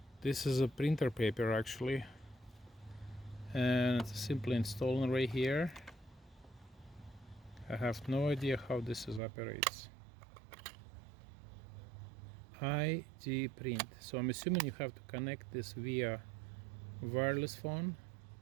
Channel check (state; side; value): drops out; left; at 9.2 s